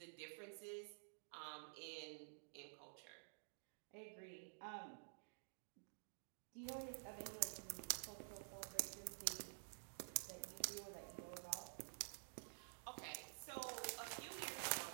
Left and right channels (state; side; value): silent; left; digital silence